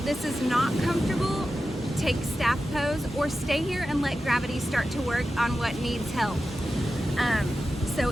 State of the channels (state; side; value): normal; both; correlation 0.92